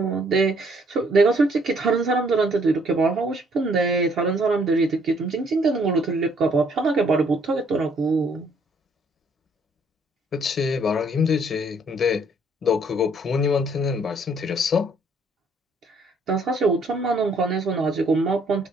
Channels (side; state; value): both; normal; correlation 0.65